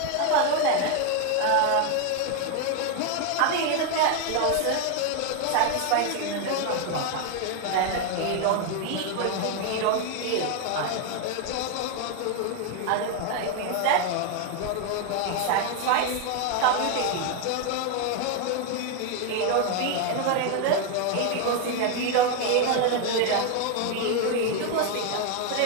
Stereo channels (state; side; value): different; both; correlation 0.01